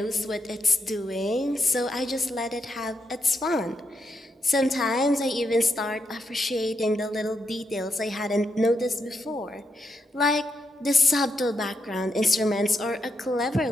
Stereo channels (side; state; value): both; normal; correlation 0.82